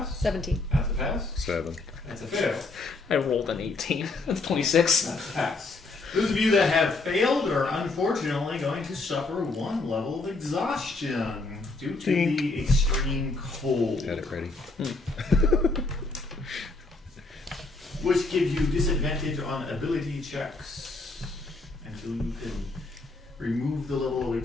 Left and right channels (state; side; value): quieter; right; 3.4 dB